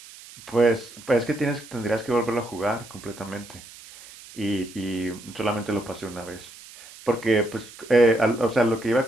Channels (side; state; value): right; noise; hiss, 19 dB below the sound